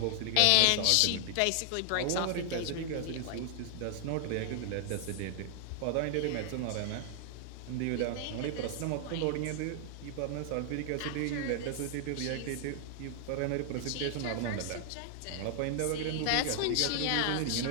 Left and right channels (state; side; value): different; both; correlation 0.00